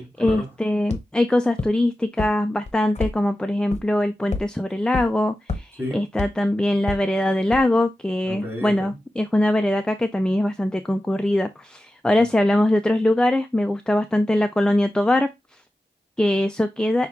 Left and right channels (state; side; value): normal; both; correlation 0.93